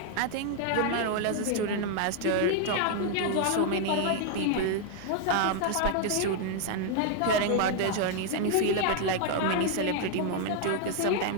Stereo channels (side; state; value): both; different; correlation 0.00